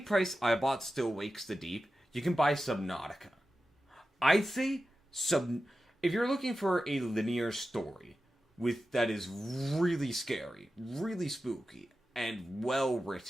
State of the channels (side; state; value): both; normal; correlation 0.92